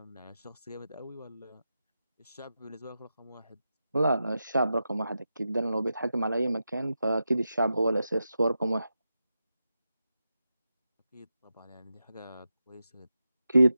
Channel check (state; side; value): inverted; both; correlation -0.90